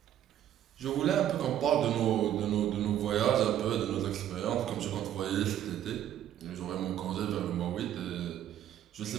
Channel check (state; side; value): quieter; left; 11.2 dB